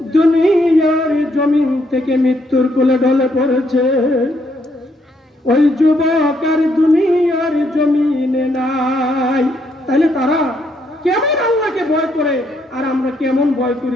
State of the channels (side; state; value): both; normal; correlation 0.73